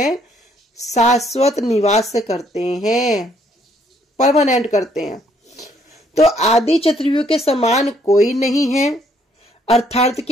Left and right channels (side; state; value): both; normal; correlation 0.67